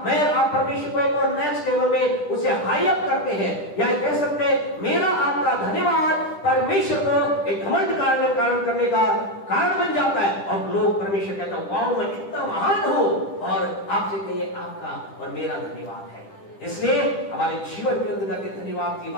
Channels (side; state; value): right; late; 10 ms